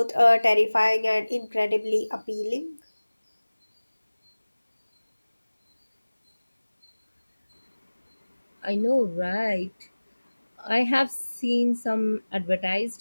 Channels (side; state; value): both; inverted; correlation -1.00